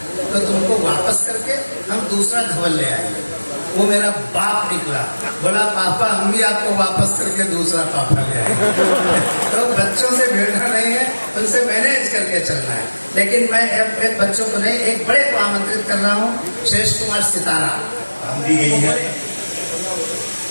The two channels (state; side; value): inverted; both; correlation -1.00